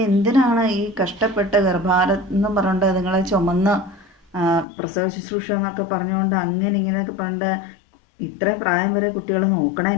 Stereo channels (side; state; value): right; drops out; at 4.7 s